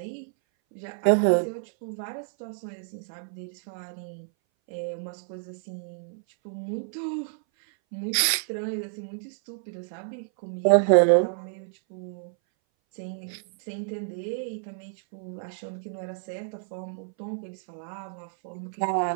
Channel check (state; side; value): silent; left; 58 dB below the other